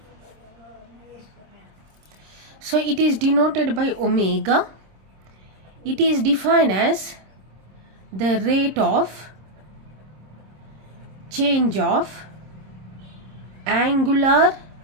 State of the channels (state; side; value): late; left; 26 ms